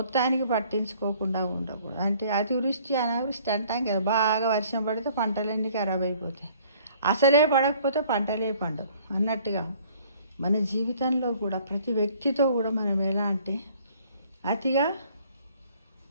పట్టించుకోకుండా ఉండకూడదు. అంటే అతివృష్టి అనావృష్టి అంటాం కదా, బాగా వర్షం పడితే పంటలన్నీ ఖరాబ్ అయిపోతాయి, అసలే పడకపోతే పంటలే పండవు అన్నట్టుగా మన జీవితంలో కూడా ప్రతి వ్యక్తితో కూడా మనం ఎలా అంటే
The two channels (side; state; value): both; inverted; correlation -0.57